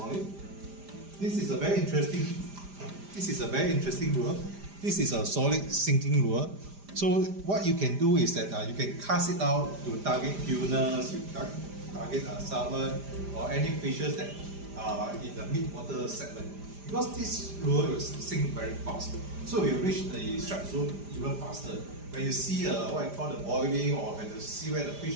This is a very interesting lure. This is a solid sinking lure. So what you can do is that you can cast it out to target tunas, target salmon, or any fishes that in the mid-water segment. Because this lure will sink very fast, so you reach the strike zone even faster. When you see what I call the boiling, or when you see where the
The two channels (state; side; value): late; left; 5.0 ms